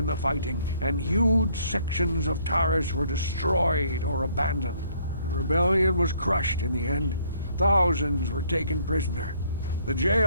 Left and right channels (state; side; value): inverted; both; correlation -0.64